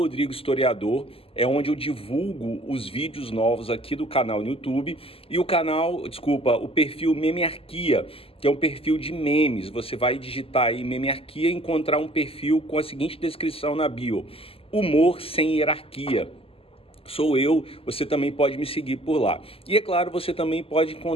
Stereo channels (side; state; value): right; late; 0.27 ms